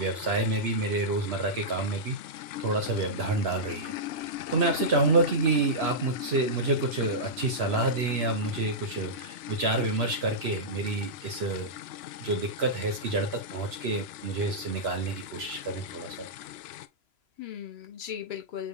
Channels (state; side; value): late; left; 3.0 ms